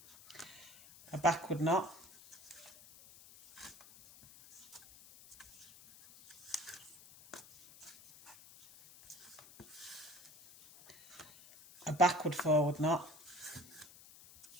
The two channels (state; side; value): noise; left; hiss, 20 dB below the sound